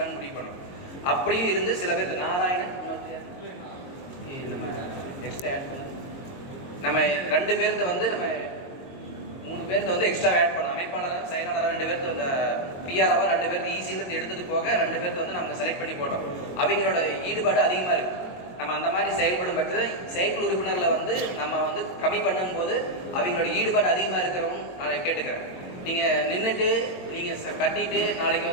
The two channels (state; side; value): late; right; 22 ms